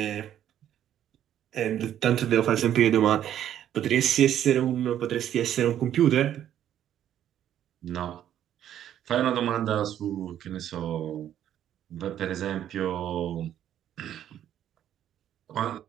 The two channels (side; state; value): left; quieter; 10.8 dB